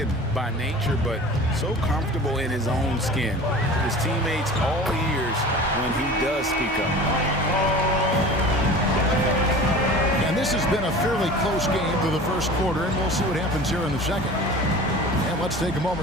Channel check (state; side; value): normal; both; correlation 0.39